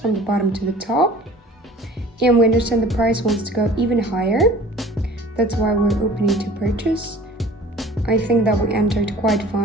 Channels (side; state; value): both; normal; correlation 0.46